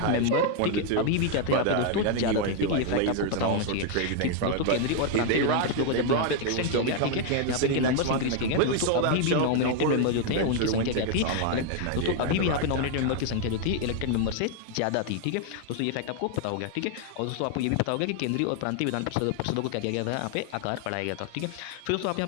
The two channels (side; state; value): both; different; correlation 0.00